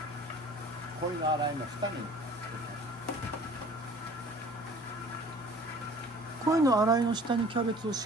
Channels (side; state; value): both; normal; correlation 0.48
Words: 鯉の洗いの下に鯉の洗いの下にキャベツを